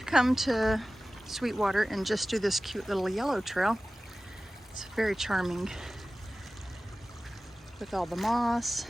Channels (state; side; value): normal; both; correlation 0.96